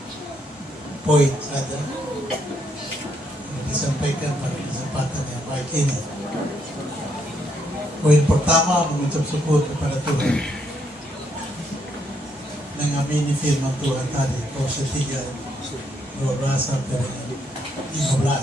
poin saja yang disampaikan pada kesempatan yang baik ini. Poin pertama, mengucap syukur kepada Tuhan, mengamini firman Tuhan tadi, Kolose 3:12 sampai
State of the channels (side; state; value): both; normal; correlation 0.74